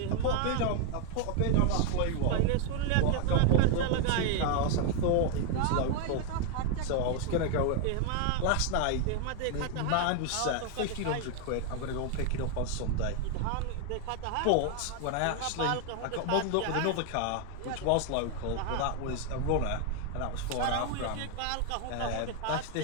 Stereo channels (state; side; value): different; both; correlation 0.01